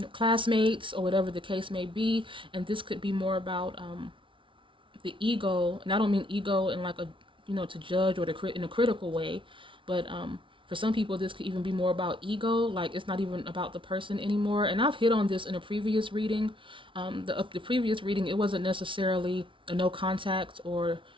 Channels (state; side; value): late; left; 0.25 ms